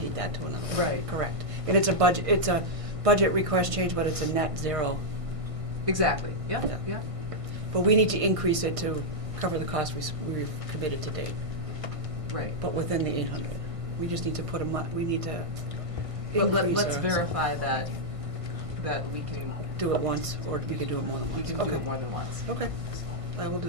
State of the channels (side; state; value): left; late; 1.6 ms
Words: that to another. Right. Correct. And it's a budget request change, but it's a net zero. Exactly, yeah, Yeah. yeah. But we need to increase it to cover the cost we've committed to date, Right. but within the 800. We just need to put we need to But increase let's our- verify that we can, Do it once, or we can do it more than we once. can do Okay. it more than once. Okay, I will do